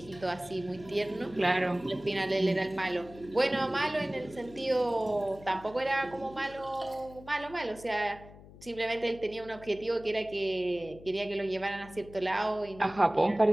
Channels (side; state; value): left; noise; hum, 19 dB below the sound